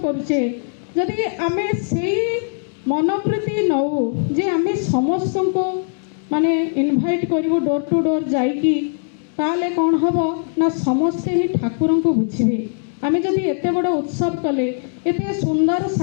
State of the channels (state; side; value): silent; right; digital silence